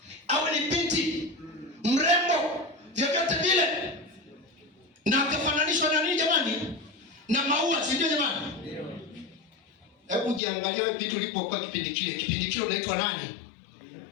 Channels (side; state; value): right; drops out; at 10.4 s